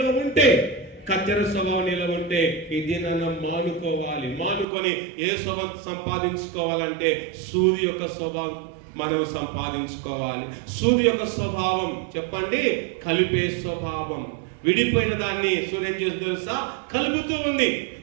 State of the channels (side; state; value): left; drops out; at 4.7 s